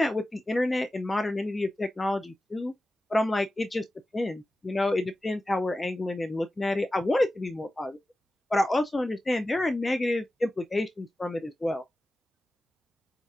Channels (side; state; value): both; normal; correlation 0.94